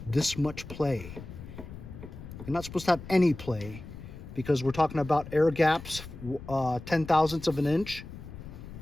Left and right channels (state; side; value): noise; left; rumble, 13 dB below the sound